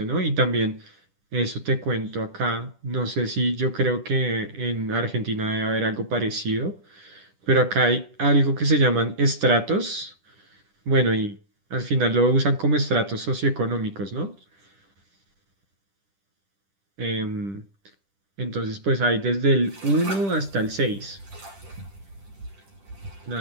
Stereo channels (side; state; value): left; late; 10 ms